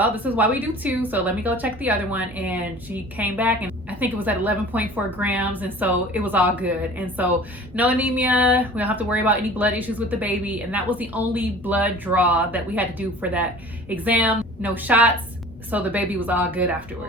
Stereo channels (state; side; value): normal; both; correlation 0.44